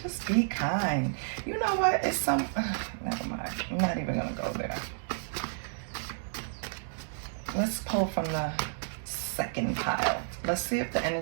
Just be kind. You know what? It's some... never mind. I'm not even going to go there. Let's pull from the second pile. Let's see if the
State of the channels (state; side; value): silent; left; digital silence